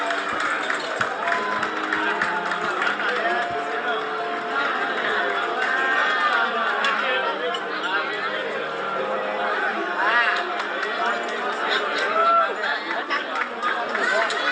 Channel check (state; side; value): identical; both; correlation 1.00